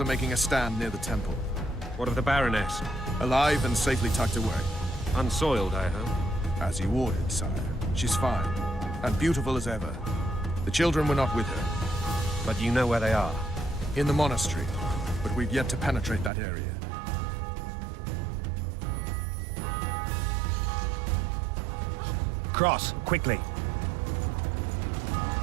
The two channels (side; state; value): left; drops out; at 16.3 s